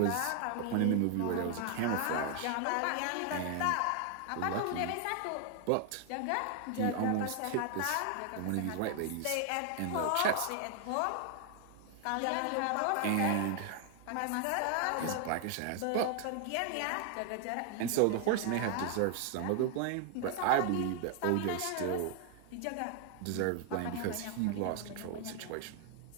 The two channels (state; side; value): different; both; correlation 0.00